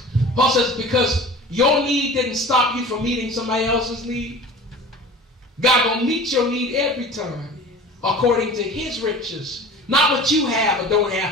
Paul says, because your need didn't stop you from meeting somebody else's need, God gonna meet your need every time according to his riches. Not what you have or don't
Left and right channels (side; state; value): both; normal; correlation 0.40